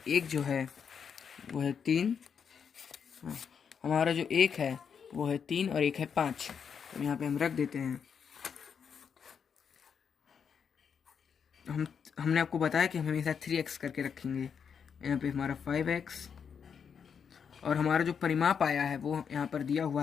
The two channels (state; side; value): quieter; right; 6.9 dB